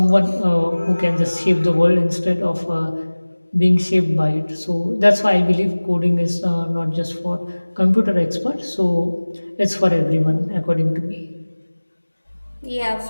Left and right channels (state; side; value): inverted; both; correlation -1.00